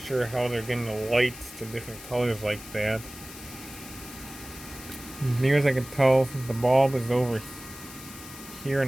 how they're getting the lights to different colors like that. Near as I can tell, the bulb is over here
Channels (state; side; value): noise; left; hiss, 15 dB below the sound